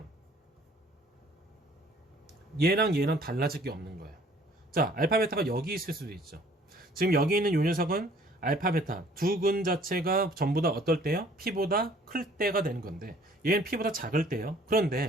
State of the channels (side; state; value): both; normal; correlation 0.56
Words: 얘랑 얘랑 달라질 게 없는 거예요. 자, 알파 베타가 여기 있을 수도 있죠. 지금 여기 있는 요 녀석은 알파 베타 두 근 자체가 전부 다 어떨 때요? p보다 클 때가 되는 건데 얘는 p보다 작을 때요.